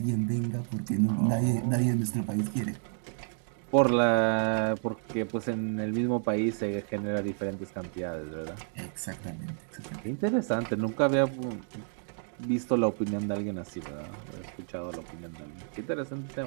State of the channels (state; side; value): silent; left; 57 dB below the other